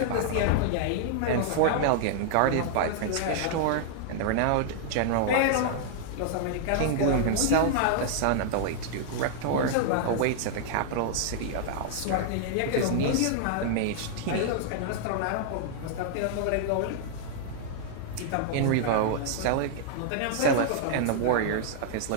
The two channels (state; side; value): different; both; correlation -0.01